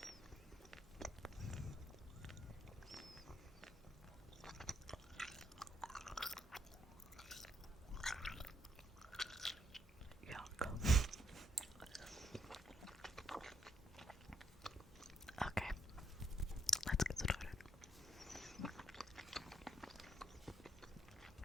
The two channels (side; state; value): both; normal; correlation 0.73